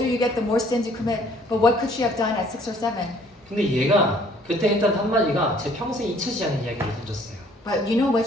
you get, the more sins you commit. But what could she have done at 6 or 7? 근데 얘가 그때 했던 한마디가 제 평생 잊혀지지 않는 이야기를 던졌어요. But you know what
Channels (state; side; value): normal; both; correlation 0.59